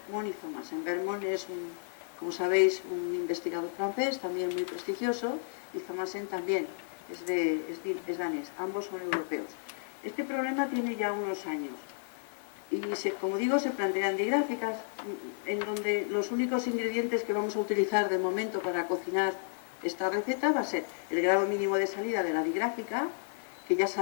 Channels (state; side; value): silent; right; digital silence